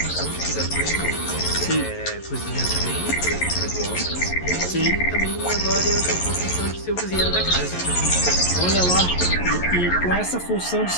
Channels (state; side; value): late; right; 11 ms